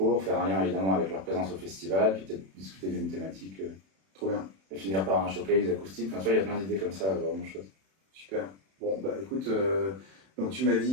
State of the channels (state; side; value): late; left; 31 ms